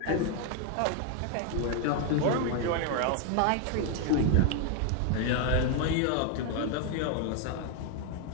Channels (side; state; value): both; different; correlation 0.01